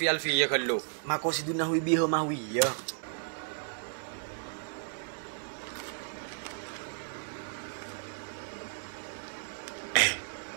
alfiyya kallu. Mako si dunahwi biha mahwiya.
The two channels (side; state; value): left; silent; 56 dB below the other